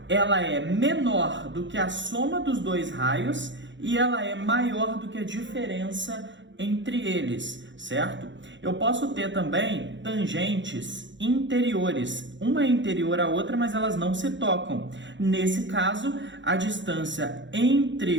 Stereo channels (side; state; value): left; late; 0.54 ms